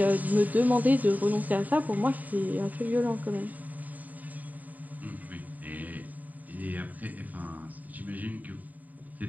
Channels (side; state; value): left; late; 0.079 ms